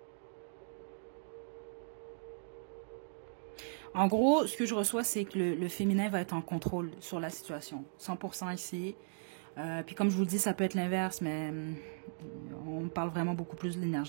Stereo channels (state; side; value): silent; left; digital silence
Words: En gros, ce que je reçois, c'est que le féminin va être en contrôle sur la situation. 100% ici. Puis comme je vous le dis, ça peut être l'inverse, mais on parle vraiment beaucoup plus de